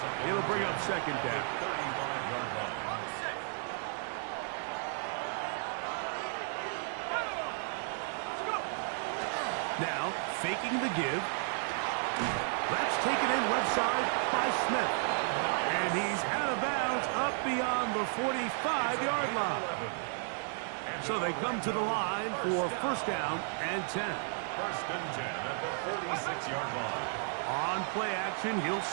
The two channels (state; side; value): silent; left; 55 dB below the other